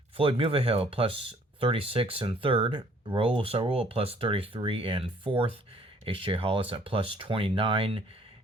Floyd Mulvihill plus 36 in third. Raul Sarul plus 33 in fourth. H.J. Hollis at plus 29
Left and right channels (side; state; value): both; normal; correlation 0.59